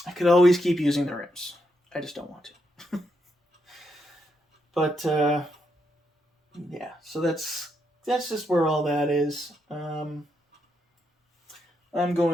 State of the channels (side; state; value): both; normal; correlation 0.80